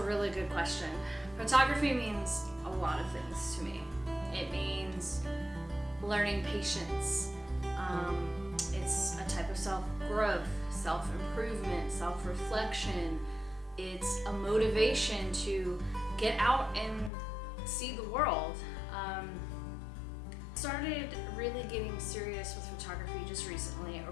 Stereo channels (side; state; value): right; drops out; at 17.1 s